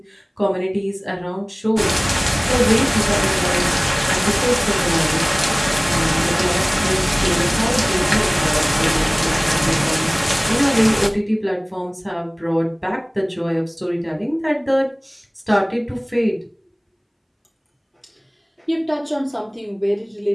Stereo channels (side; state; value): both; identical; correlation 1.00